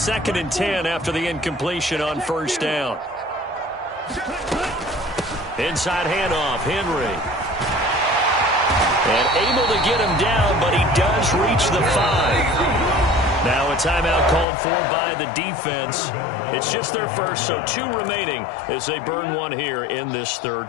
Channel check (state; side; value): drops out; right; at 14.5 s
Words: and 10 after the incompletion on first down. Inside handoff, Henry. And able to get him down, but he does reach the 5. Now a timeout called for by the defense. It's just their first, so 2 remaining as they burn one here in this